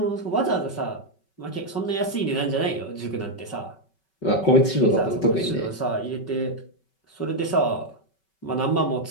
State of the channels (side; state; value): right; late; 5.3 ms